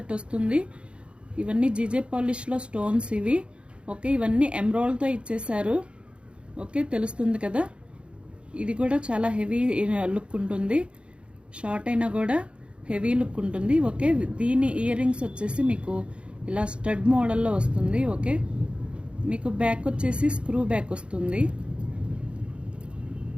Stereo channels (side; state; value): left; late; 0.057 ms